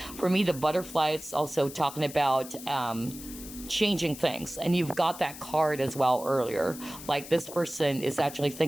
For me, the butterfly is also talking about changing things, and you've got that card as well earlier. Like, this person is actually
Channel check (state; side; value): noise; left; hiss, 14 dB below the sound